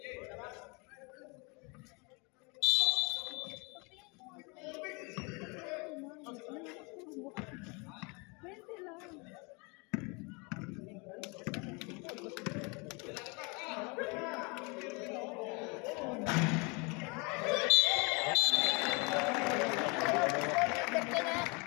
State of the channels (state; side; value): quieter; right; 30.5 dB